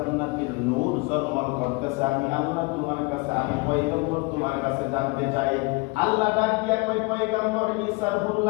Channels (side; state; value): right; quieter; 27.0 dB